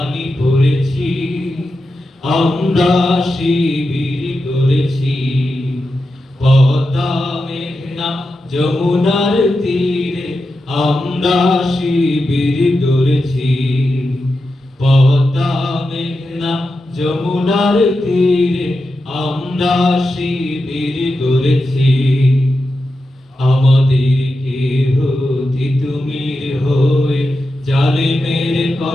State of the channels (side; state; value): both; normal; correlation 0.89